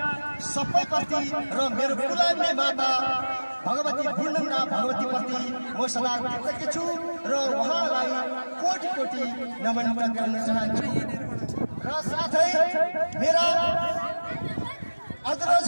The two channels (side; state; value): both; inverted; correlation -1.00